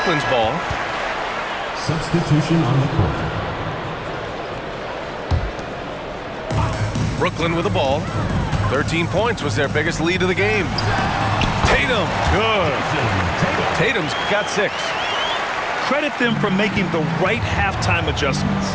ball. Substitution on the court. Brooklyn with the ball. 13 points was their biggest lead of the game. Tatum, good. Tatum's got 6. Credit them for making the right halftime adjustments.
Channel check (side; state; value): both; identical; correlation 1.00